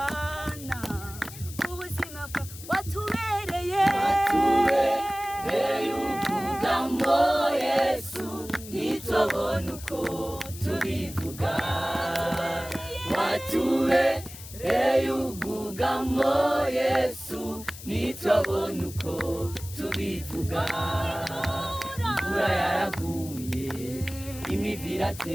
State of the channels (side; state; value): left; noise; hiss, 14 dB below the sound